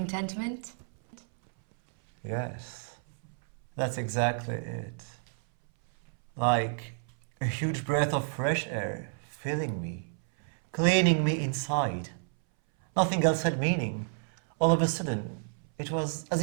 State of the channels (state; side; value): silent; left; 58 dB below the other